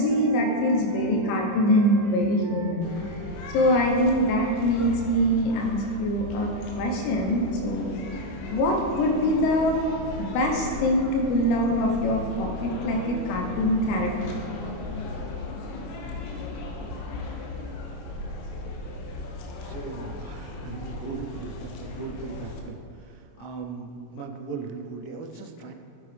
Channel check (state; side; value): late; right; 25 ms